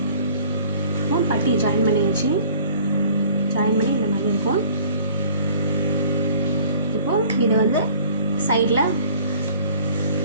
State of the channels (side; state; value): both; inverted; correlation -0.51